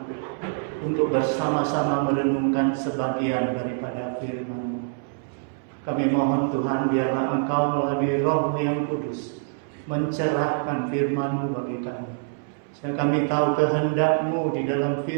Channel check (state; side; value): silent; left; 62 dB below the other